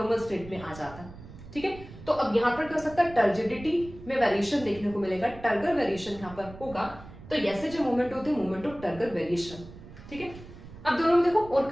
स्टेट में आ जाता है। ठीक है, तो अब यहाँ पर क्या हो सकता है, टर्जिडिटी में वेरिएशन देखने को मिलेगा, टर्गर वेरिएशन यहाँ पर होगा। तो ऐसे जो मूवमेंट होते हैं मूवमेंट ऑफ टर्गर वेरिएशन। ठीक है, अब दोनों में देखो और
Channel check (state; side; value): noise; right; rumble, 16 dB below the sound